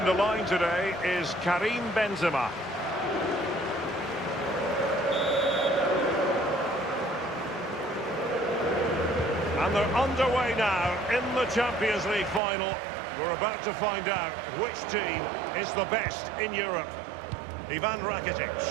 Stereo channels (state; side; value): drops out; left; at 12.4 s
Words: the line today is Karim Benzema. And they're underway now in the Champions League final. We're about to find out which team is the best in Europe. Ivan Rakitic.